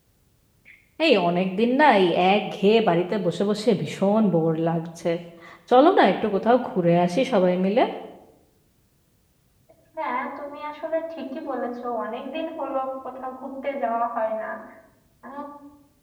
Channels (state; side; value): identical; both; correlation 1.00